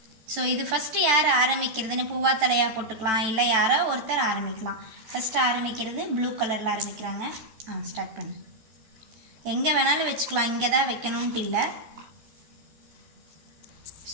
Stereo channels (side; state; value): left; late; 14 ms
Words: ஸோ இது ஃபஸ்ட்டு யார் ஆரம்பிக்கிறதுன்னு பூவா தலையாக போட்டுக்கலாம், இல்லை யாரோ ஒருத்தர் ஆரம்பிக்கலாம். ஃபஸ்ட்டு ஆரம்பிக்கிறது ப்ளூ கலரில் ஆரம்பிக்கிறாங்க. ஸ்டார்ட் பண்ணு. எங்கே வேணாலும் வச்சுக்கலாம், இங்கே தான் வைக்கணுன்ட்டு இல்லை.